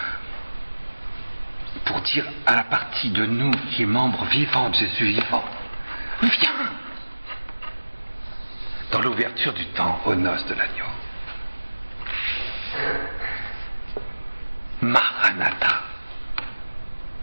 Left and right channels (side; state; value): both; inverted; correlation -1.00